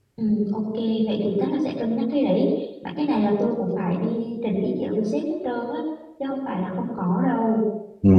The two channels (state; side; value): identical; both; correlation 1.00